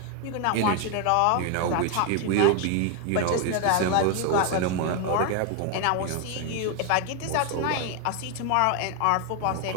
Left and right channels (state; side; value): different; both; correlation 0.01